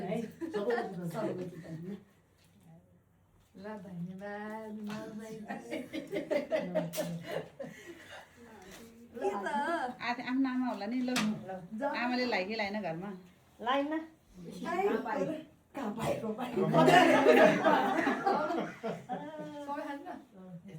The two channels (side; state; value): both; identical; correlation 1.00